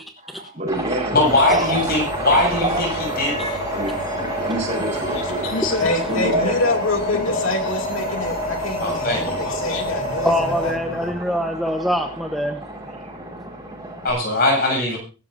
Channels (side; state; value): both; normal; correlation 0.02